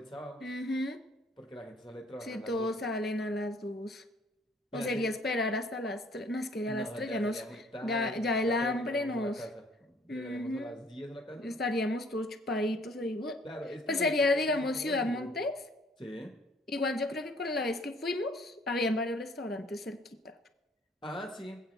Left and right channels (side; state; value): both; normal; correlation 0.59